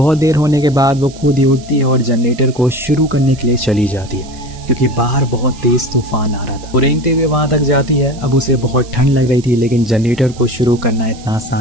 देर होने के बाद वो खुद ही उठती है और जनरेटर को शुरू करने के लिए चली जाती है क्योंकि बाहर बहुत तेज तूफान आ रहा था। वो रेंगते हुए वहां तक जाती है। अब उसे बहुत ठंड लग रही थी लेकिन जनरेटर को शुरू करना इतना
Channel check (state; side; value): noise; right; hiss, 21 dB below the sound